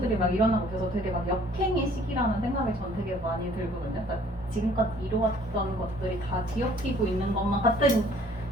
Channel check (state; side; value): normal; both; correlation 0.57